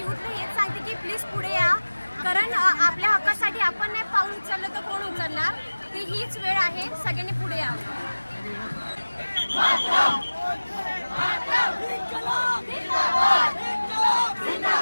हेच सांगते की प्लीज पुढे या, कारण आपल्या हक्कासाठी आपण नाही पाऊल उचललं तर कोण उचलणार. ती हीच वेळ आहे, सगळ्यांनी पुढे या.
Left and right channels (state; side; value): inverted; both; correlation -1.00